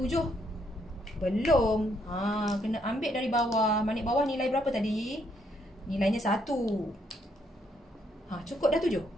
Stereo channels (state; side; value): normal; both; correlation 0.72